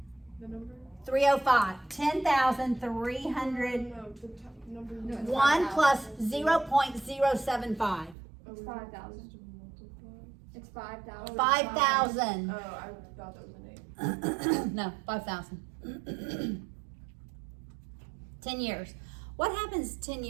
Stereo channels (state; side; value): drops out; left; at 8.2 s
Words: The number? 305. 10,300. No, the number. No, it's 1 plus It's 0.075. 5,000. It's 5,000. 5,000. Oh, I thought that was an 8. No, 5,000. 10 years. What happens 10